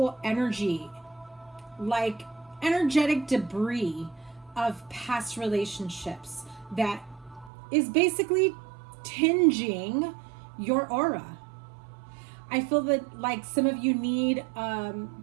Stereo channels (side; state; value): left; drops out; at 7.5 s